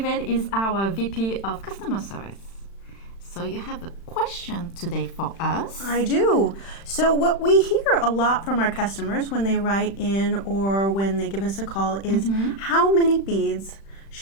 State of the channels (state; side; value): late; right; 36 ms